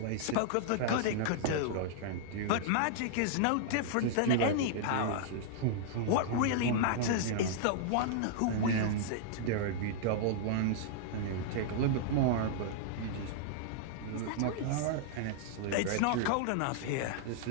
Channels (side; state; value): both; different; correlation -0.01